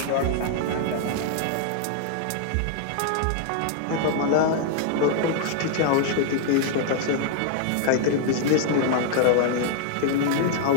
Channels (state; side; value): different; both; correlation 0.00